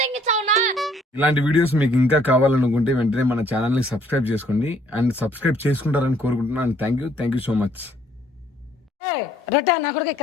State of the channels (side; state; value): both; normal; correlation 0.63